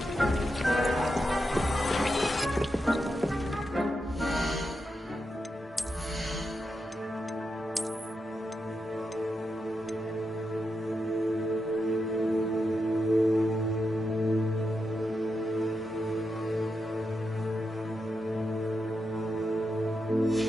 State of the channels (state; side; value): normal; both; correlation 0.86